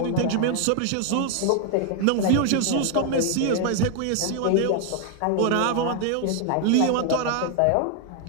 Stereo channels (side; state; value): both; different; correlation 0.00